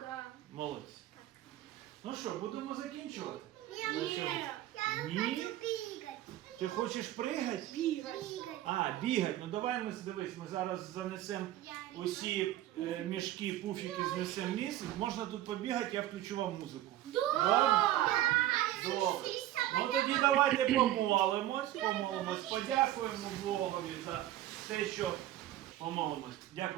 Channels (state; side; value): quieter; left; 13.8 dB